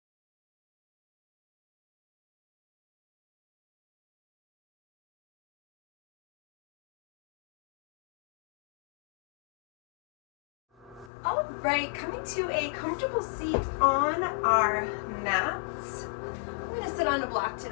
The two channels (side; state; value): right; drops out; at 11.1 s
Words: All right, coming to a comfortable seat on our mats. I'm going to sit on a block